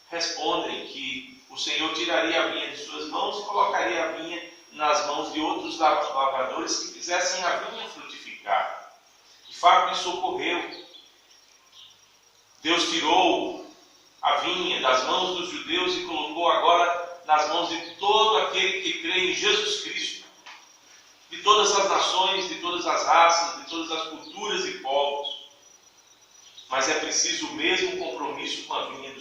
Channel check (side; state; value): both; identical; correlation 1.00